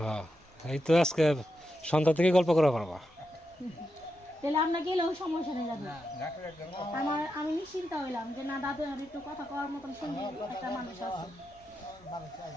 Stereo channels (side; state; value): both; normal; correlation 0.87